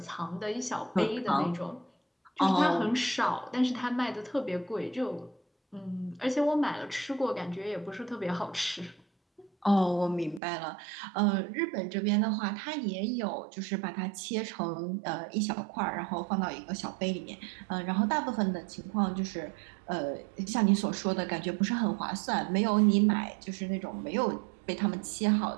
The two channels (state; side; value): drops out; left; at 10.4 s